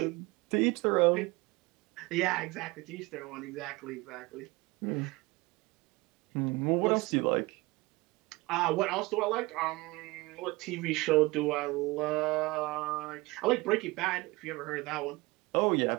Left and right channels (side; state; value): left; quieter; 22.7 dB